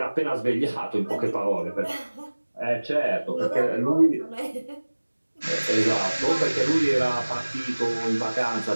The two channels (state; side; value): inverted; both; correlation -1.00